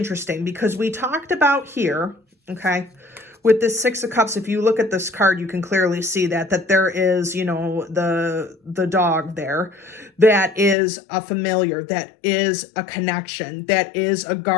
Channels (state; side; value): drops out; right; at 10.8 s